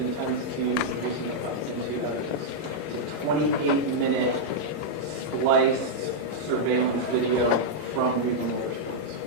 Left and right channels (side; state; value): left; late; 19 ms